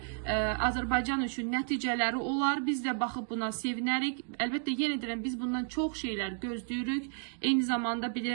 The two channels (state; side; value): silent; left; 56 dB below the other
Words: Azərbaycan üçün nəticələri olar. Biz də baxıb buna sevinərik. Əlbəttə, yenə deyirəm, biz bundan çox şeylər gözləyirik. Eyni zamanda